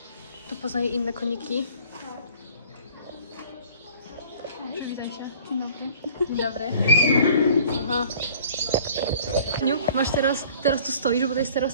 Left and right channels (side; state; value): both; inverted; correlation -0.50